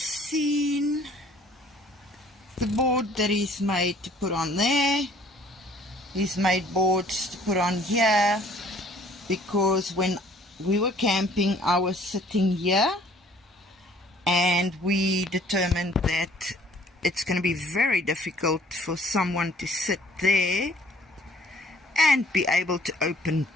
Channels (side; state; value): both; normal; correlation 0.57